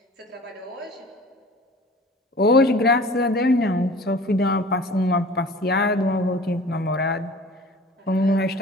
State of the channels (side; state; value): both; normal; correlation 0.44